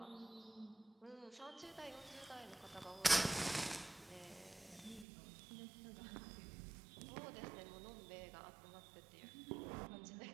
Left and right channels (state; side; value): drops out; left; at 5.1 s